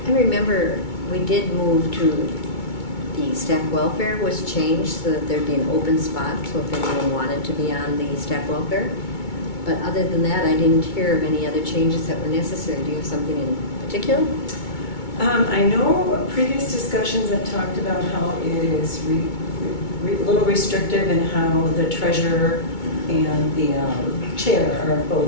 remember we did move to the staff welfare was changed so that there'd be an open spot, so if anyone wanted to be on the staff welfare. But other than that, I didn't hear of any other changes that were necessary. Do you have something in particular? I know previous discussions have talked about how it is a little restrictive in how the treasurer and the chair are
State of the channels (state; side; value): late; right; 2.2 ms